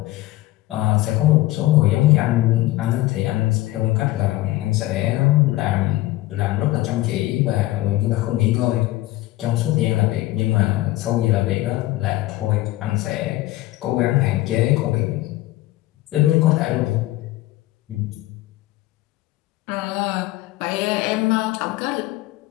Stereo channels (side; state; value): right; quieter; 17.3 dB